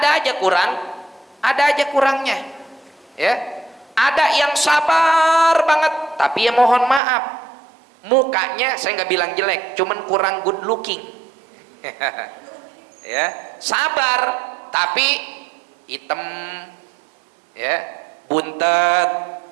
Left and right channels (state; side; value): drops out; left; at 7.0 s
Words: aja kurang, ada aja kurangnya, ya. Ada yang sabar banget tapi ya mohon maaf, mukanya saya nggak bilang jelek, cuman kurang good looking. Ya, sabar tapi hitam, ya, buntet,